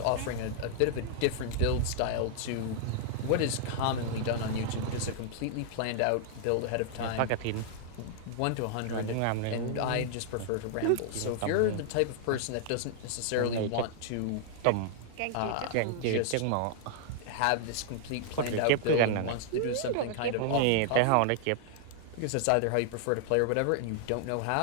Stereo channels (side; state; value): both; different; correlation -0.01